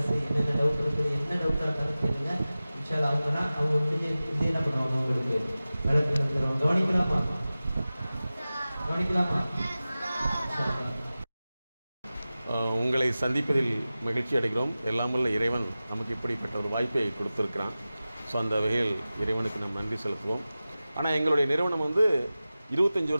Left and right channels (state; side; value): inverted; both; correlation -0.96